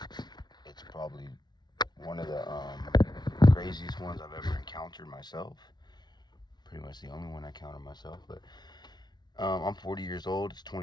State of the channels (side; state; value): right; late; 0.20 ms